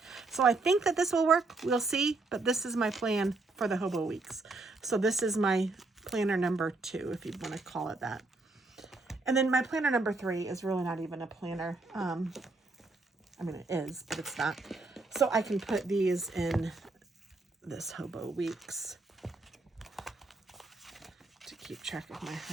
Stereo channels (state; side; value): quieter; left; 3.4 dB